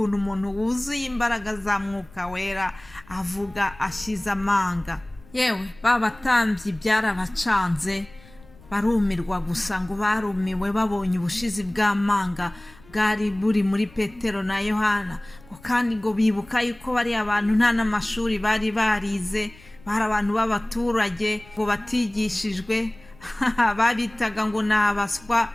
umuntu wuzuye imbaraga za mwuka wera avuga ashize amanga. Yewe babatambyi byarabacanze, barumirwa gusa, ngo barumiwe babonye ubushizi bw'amanga bwari buri muri Petero na Yohana. Kandi ngo bibuka yuko bari abantu nta n'amashuri bari barize, bari abantu b'abaturage ngo batigishijwe, babitaga ngo ni abaswa,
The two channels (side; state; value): left; noise; rumble, 24 dB below the sound